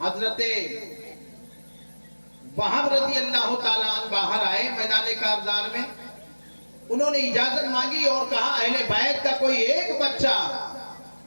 وہاب رضی اللہ تعالیٰ عنہ باہر آئے میدان کارزار میں، انہوں نے اجازت مانگی اور کہا اہل بیت کا کوئی ایک بچہ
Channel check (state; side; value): inverted; both; correlation -1.00